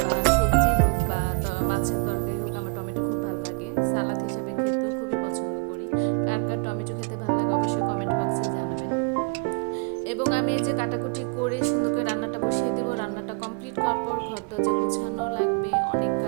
বা সবজি হোক বা মাছের তরকারি হোক, আমার টমেটো খুব ভালো লাগে। সালাদ হিসাবে খেতেও খুবই পছন্দ করি। কার কার টমেটো খেতে ভালো লাগে অবশ্যই কমেন্ট বক্সে জানাবেন। এবং আমি এই যে কাটাকুটি করে সুন্দর করে রান্নাটা বসিয়ে দেবো। রান্নাটা কমপ্লিট করার পর ঘর দরজা গুছানো লাগবে, অনেক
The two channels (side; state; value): left; quieter; 33.6 dB